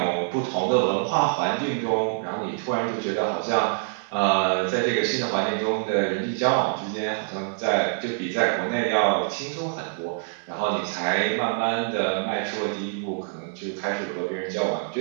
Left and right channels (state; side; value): silent; left; digital silence